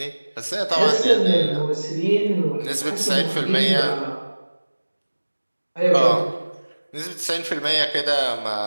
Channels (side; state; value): both; inverted; correlation -1.00